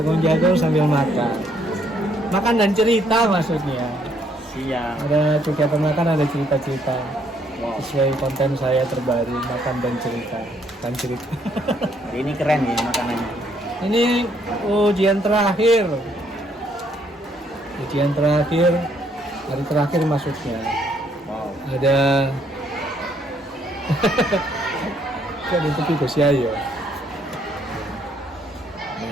sambil makan. Makan dan cerita maksudnya. Siap. Ada kegiatan makan, ada cerita-cerita. Wow. Sesuai konten saya terbaru, makan dan cerita. Dan cerita. Hari ini keren ya makanannya. Ini ujian terakhir. Ujian terakhir, hari terakhir maksudnya. Wow. Ada kan itu Gus Yai ya.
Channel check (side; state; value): both; normal; correlation 0.69